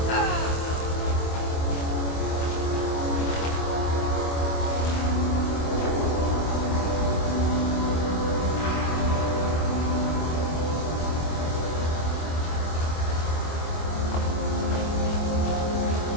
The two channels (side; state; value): right; late; 25 ms